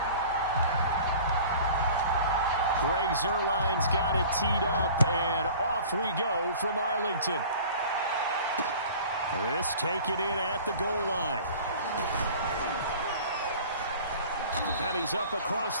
Greg Zuerlein's got it teed up, and off we go from Arlington. This taken in at the goal line. And he's up across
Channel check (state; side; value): inverted; both; correlation -0.44